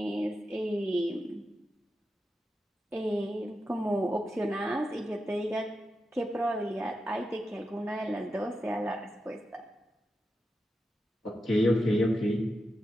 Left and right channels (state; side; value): normal; both; correlation 0.89